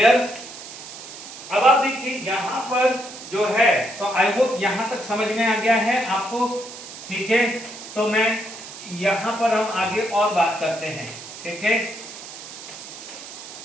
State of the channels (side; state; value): right; noise; hiss, 13 dB below the sound